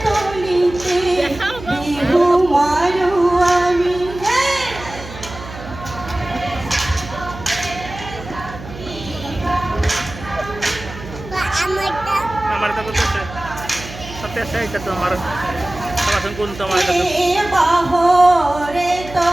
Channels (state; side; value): noise; right; hum, 14 dB below the sound